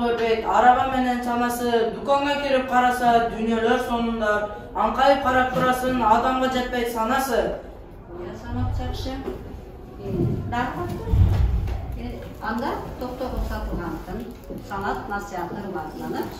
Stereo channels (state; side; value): identical; both; correlation 1.00